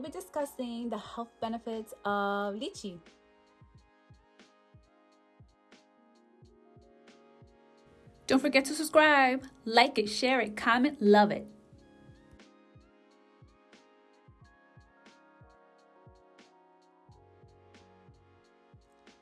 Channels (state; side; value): identical; both; correlation 1.00